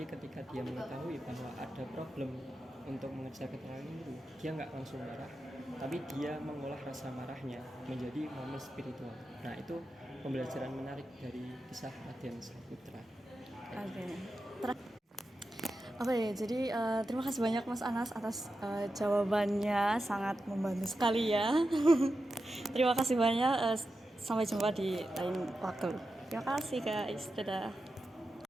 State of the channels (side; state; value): both; normal; correlation 0.90